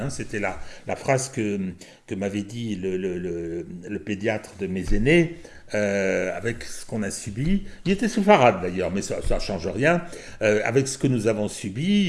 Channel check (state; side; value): identical; both; correlation 1.00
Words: C'était la phrase que m'avait dit le pédiatre de mes aînés, avec ce qu'on a subi. Il était séfarade d'ailleurs, mais ça ne change rien. Avec ce que nous avons